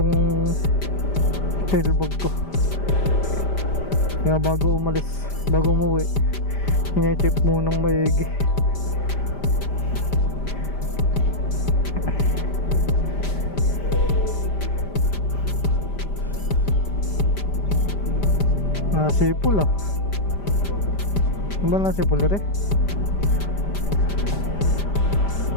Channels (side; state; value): right; late; 5.1 ms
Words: tail bag ko. Kaya bago umuwi, hine-check munang maigi. Nasipul ah. Ano ba nasipul ere?